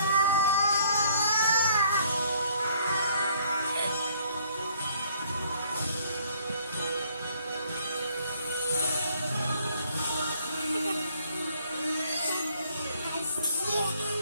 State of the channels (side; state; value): both; inverted; correlation -0.63